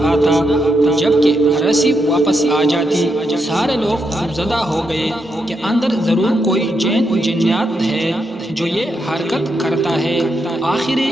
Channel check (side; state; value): both; normal; correlation 0.82